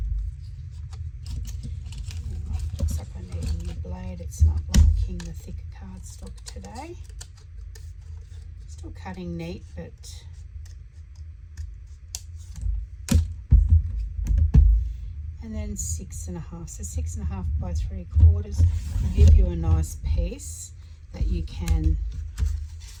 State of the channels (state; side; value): identical; both; correlation 1.00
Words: Looks like I need a new blade. It's not liking the thicker cardstock today. Still cutting neat, but and then 6.5. So 6.5 by 3/4 will give you a nice piece that you can